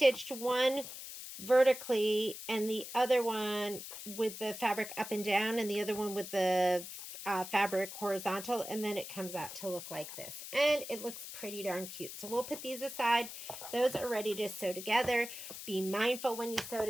one vertically and the other one with the fabric up and down, and the other one with the fabric horizontal, and then it comes out to look like this. And it looks pretty darn cute. So we'll put these aside. Those are ready to sew together. Be mindful when you sew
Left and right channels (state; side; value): noise; left; hiss, 10 dB below the sound